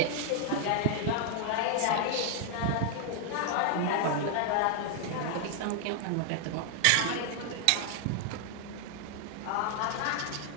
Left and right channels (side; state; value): both; different; correlation 0.00